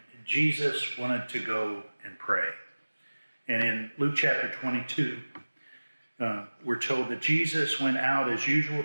Jesus wanted to go and pray. And in Luke chapter 22, we're told that Jesus went out as usual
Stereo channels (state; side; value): inverted; both; correlation -1.00